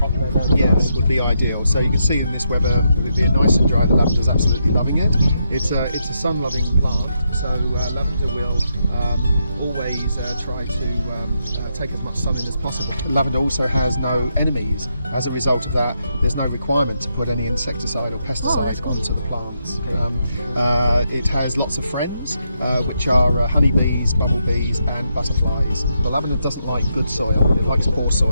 weather. Yes, would be ideal. So you can see in this weather, with it being nice and dry, the lavender is absolutely loving it. It's a sun-loving plant, so lavender will always try to take as much sun in as possible. Lavender also has no enemies. As a result of that, there's no requirement to put any insecticide or pesticide onto the plants. It has lots of friends, which are honeybees, bumblebees and butterflies. The lavender doesn't like good soil, it likes poor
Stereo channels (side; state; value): both; inverted; correlation -0.81